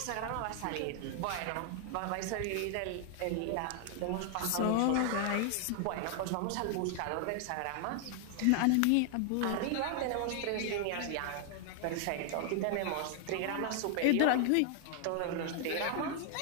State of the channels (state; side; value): different; both; correlation 0.00